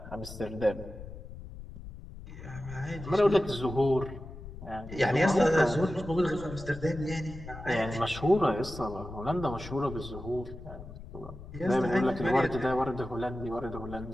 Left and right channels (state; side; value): noise; left; rumble, 13 dB below the sound